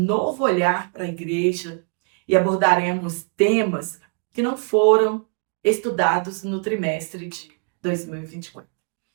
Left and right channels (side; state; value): left; quieter; 39.8 dB